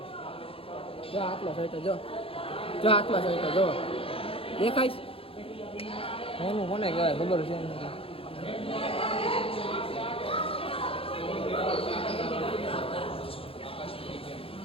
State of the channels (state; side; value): late; right; 0.27 ms